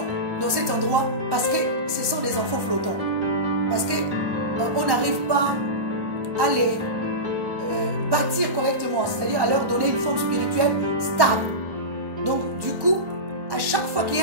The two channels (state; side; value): late; left; 1.2 ms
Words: dans cet endroit parce que ce sont des enfants flottants. Parce qu'on n'arrive pas à les bâtir correctement, c'est-à-dire à leur donner une forme spirituelle stable. Donc, du coup, à chaque fois qu'il y